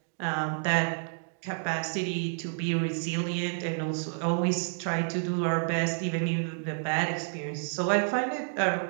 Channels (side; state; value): left; silent; 58 dB below the other